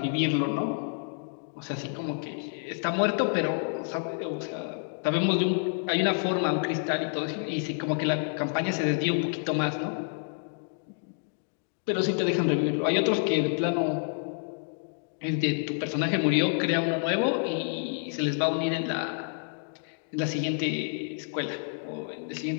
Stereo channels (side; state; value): right; silent; 59 dB below the other